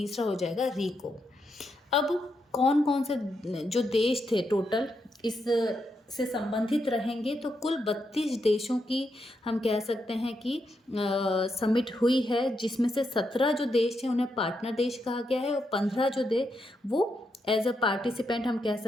हो जाएगा रीको। अब कौन कौन से जो देश थे टोटल इस से संबंधित रहेंगे, तो कुल 32 देशों की हम कह सकते हैं कि समिट हुई है, जिसमें से 17 जो देश हैं उन्हें पार्टनर देश कहा गया है और 15 जो वो एज अ पार्टिसिपेंट हम कह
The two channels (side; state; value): both; normal; correlation 0.82